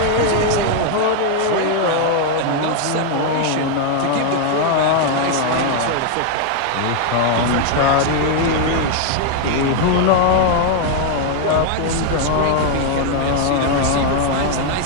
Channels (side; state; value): both; different; correlation 0.00